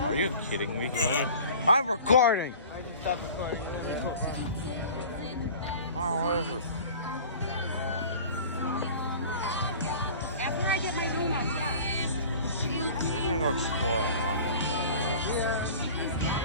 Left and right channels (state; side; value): inverted; both; correlation -0.42